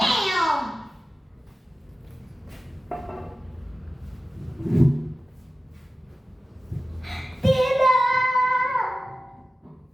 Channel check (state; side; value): normal; both; correlation 0.95